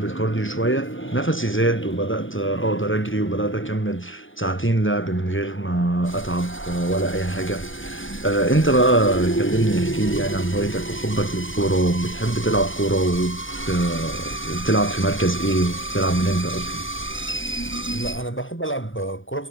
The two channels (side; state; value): right; late; 0.57 ms